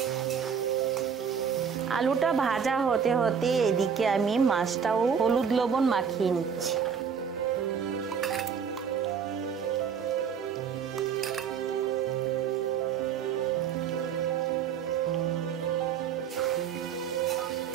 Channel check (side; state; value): left; quieter; 7.1 dB